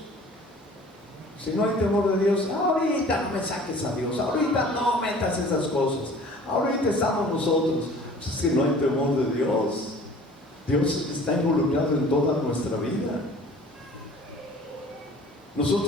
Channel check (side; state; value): both; normal; correlation 0.48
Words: Si no hay temor de Dios, ahorita no me saques a Dios, ahorita no metas esas cosas, ahorita estamos nosotros. Pues es que no hay temor de Dios. Dios está involucrado en toda nuestra vida.